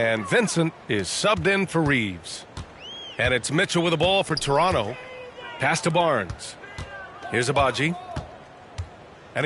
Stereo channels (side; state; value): both; identical; correlation 1.00